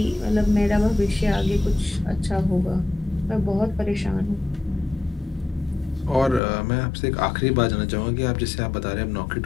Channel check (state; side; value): drops out; right; at 6.4 s